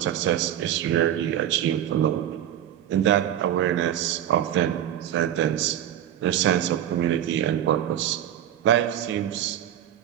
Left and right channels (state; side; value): quieter; left; 11.0 dB